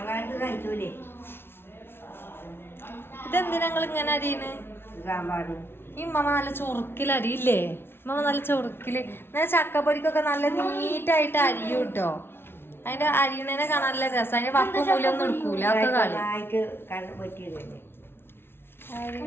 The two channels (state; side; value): late; right; 0.11 ms